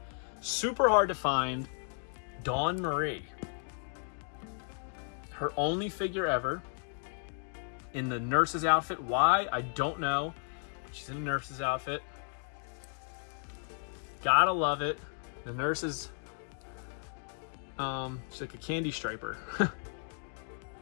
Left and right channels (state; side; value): silent; right; 55 dB below the other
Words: Super hard to find. Dawn Marie. Her only figure ever. In the nurse's outfit. Why? I don't know. She's in a nurse's outfit. Gotta love it. The nurse is she's like a candy striper.